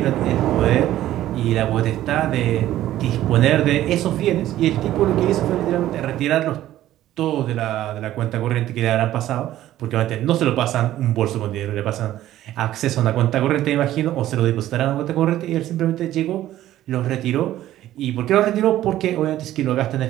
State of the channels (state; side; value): quieter; left; 13.6 dB